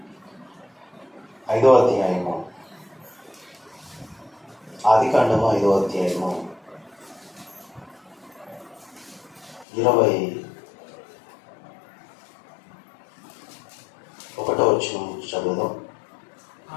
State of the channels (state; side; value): drops out; right; at 9.7 s